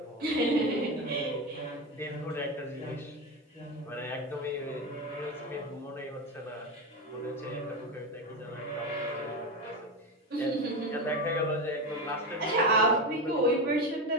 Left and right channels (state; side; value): normal; both; correlation 0.17